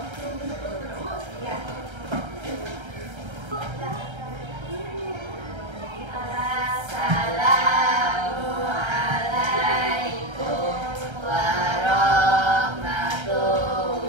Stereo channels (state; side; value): late; left; 1.3 ms